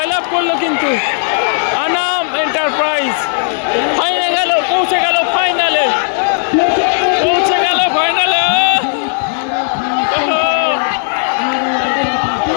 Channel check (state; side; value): silent; right; digital silence